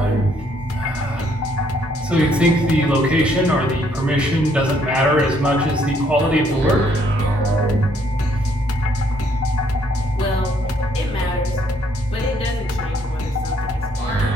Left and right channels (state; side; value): normal; both; correlation 0.68